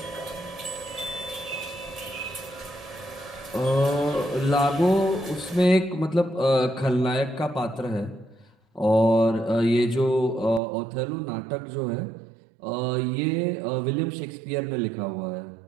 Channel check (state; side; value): drops out; left; at 10.6 s